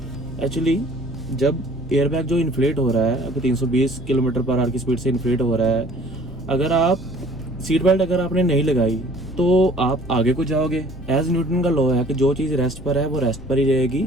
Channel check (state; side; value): noise; left; rumble, 17 dB below the sound